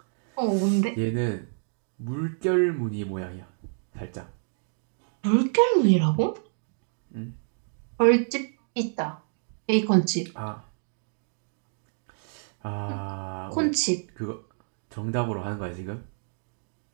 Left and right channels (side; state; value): left; silent; digital silence